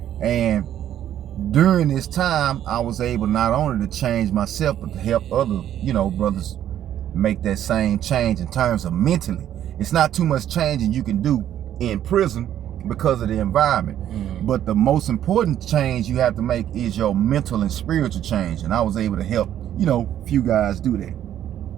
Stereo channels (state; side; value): quieter; left; 11.1 dB